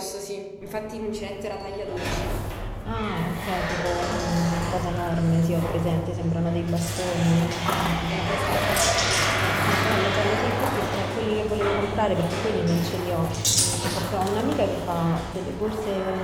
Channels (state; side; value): identical; both; correlation 1.00